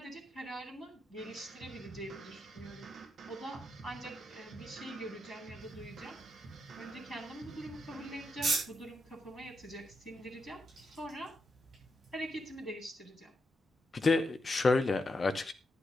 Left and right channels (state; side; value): normal; both; correlation 0.84